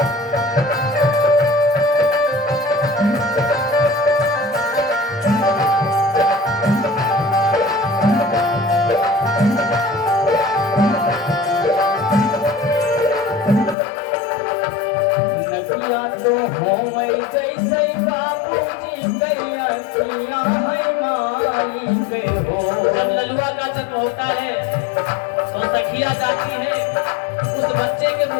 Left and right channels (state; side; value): drops out; right; at 13.8 s